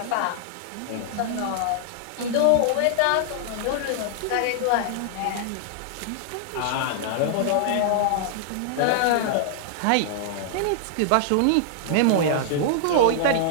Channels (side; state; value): both; different; correlation -0.01